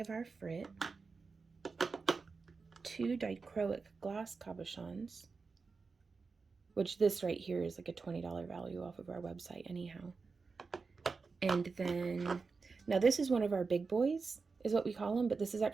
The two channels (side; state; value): left; quieter; 4.6 dB